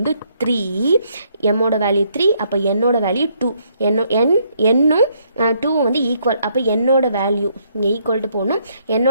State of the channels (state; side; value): inverted; both; correlation -0.71